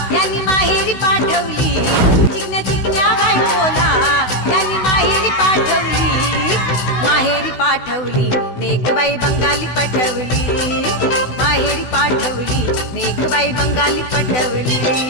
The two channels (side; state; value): right; late; 16 ms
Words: यांनी माहेरी पाठवली. चिकन्या चिकन्या बायकोला यांनी माहेरी पाठवली. माहेरी पाठवली नेकबाई बंगाली पटवली. माहेरी पाठवली नेकबाई बंगाली पटवली.